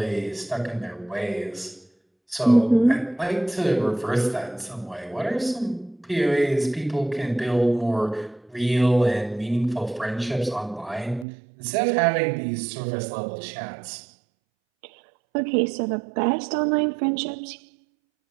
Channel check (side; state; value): left; drops out; at 11.2 s